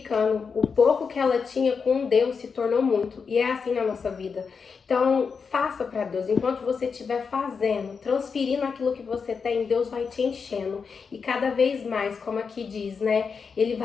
O pouco que ela tinha com Deus se tornou muito. E é assim na nossa vida. Então, faça para Deus. Enquanto você estiver fazendo, transferindo aquilo que você tem, Deus vai te enchendo. E cada vez mais, como aqui diz, né? Ele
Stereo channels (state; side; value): quieter; right; 5.6 dB